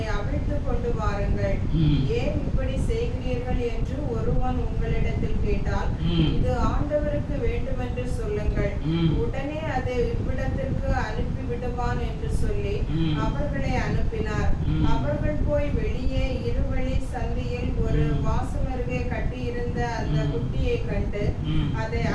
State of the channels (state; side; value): identical; both; correlation 1.00